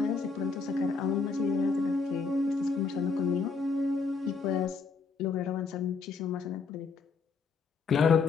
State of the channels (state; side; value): quieter; right; 4.8 dB